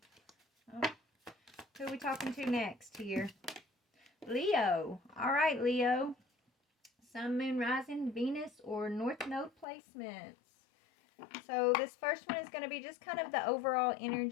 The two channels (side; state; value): right; drops out; at 9.7 s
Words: Oh, who are we talking to next here? Leo. All right, Leo. Sun, Moon, Rising, Venus, or North Node placements. So this first one is going to be just kind of the overall